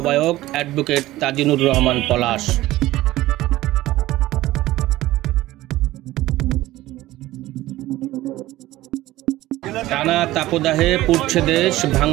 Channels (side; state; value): left; quieter; 16.5 dB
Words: অ্যাডভোকেট তাজিনুর রহমান পলাশ। টানা তাপদাহে পুড়ছে দেশ,